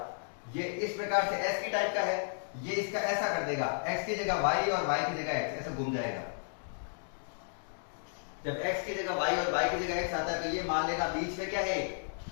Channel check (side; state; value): right; silent; digital silence